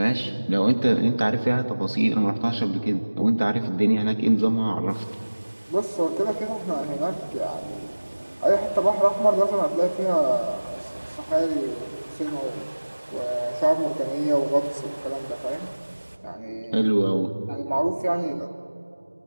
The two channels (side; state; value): both; inverted; correlation -1.00